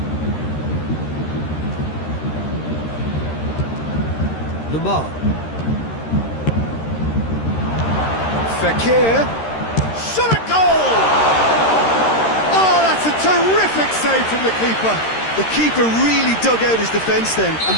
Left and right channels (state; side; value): late; right; 13 ms